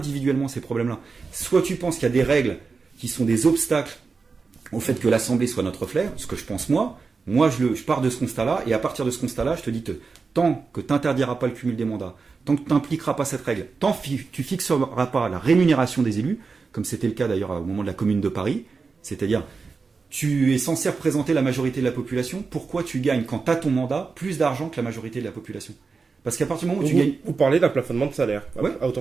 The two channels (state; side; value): quieter; left; 4.6 dB